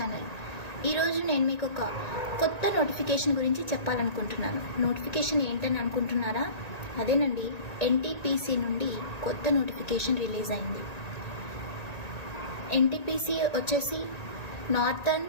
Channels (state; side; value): late; right; 1.9 ms